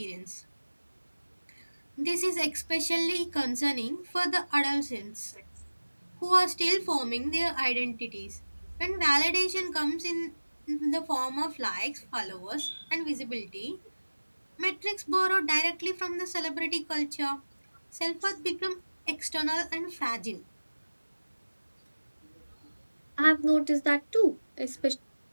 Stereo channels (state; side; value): inverted; both; correlation -1.00